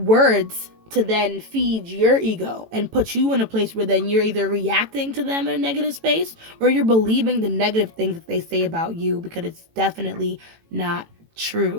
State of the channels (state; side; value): late; left; 18 ms